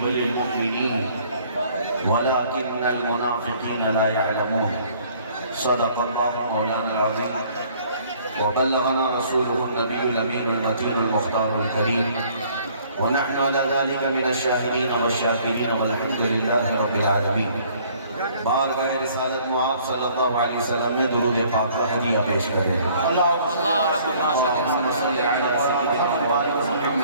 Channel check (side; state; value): both; inverted; correlation -0.58